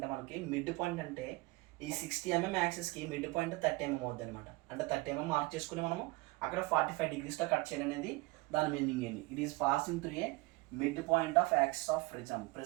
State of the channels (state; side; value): quieter; left; 22.7 dB